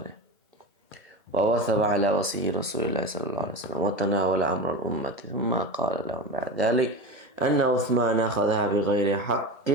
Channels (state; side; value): normal; both; correlation 0.25